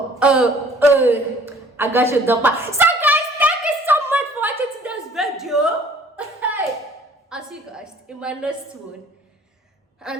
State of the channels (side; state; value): both; normal; correlation 0.54